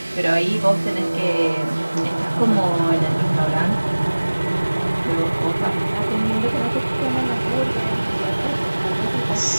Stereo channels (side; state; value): both; inverted; correlation -1.00